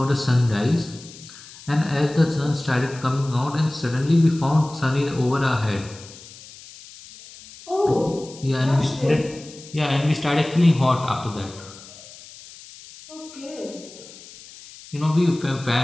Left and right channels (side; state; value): left; noise; hiss, 19 dB below the sound